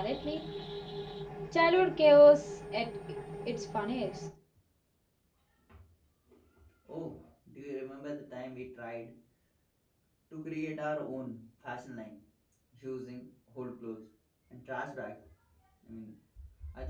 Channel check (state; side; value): identical; both; correlation 1.00